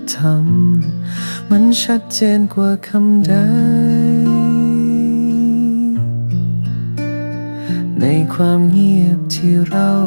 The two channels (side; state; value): both; inverted; correlation -1.00